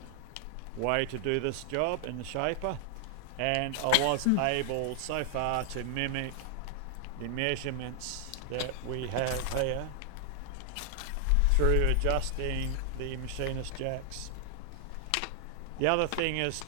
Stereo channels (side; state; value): both; different; correlation 0.00